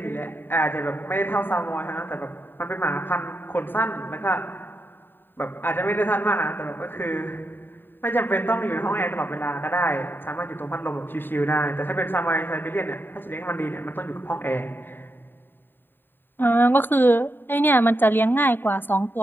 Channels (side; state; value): right; late; 0.095 ms